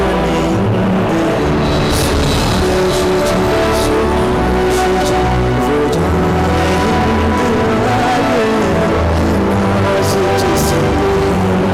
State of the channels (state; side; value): identical; both; correlation 1.00